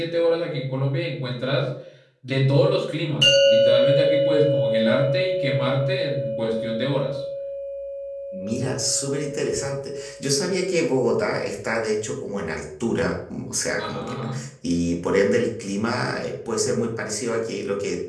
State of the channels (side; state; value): both; identical; correlation 1.00